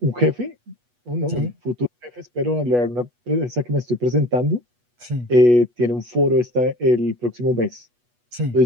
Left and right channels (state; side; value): late; left; 8.2 ms